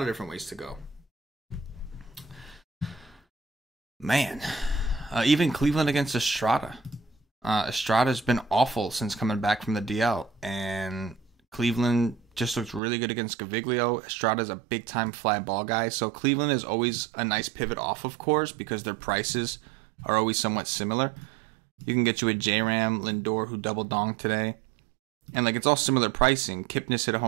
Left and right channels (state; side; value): drops out; left; at 12.8 s